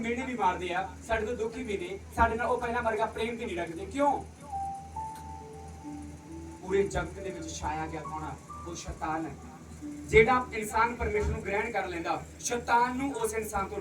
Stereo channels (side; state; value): both; identical; correlation 1.00